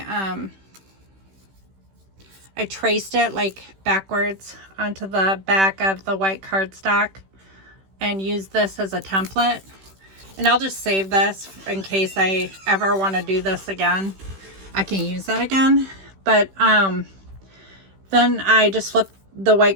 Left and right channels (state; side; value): late; left; 16 ms